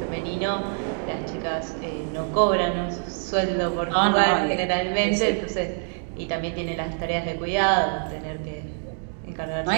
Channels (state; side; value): silent; left; 56 dB below the other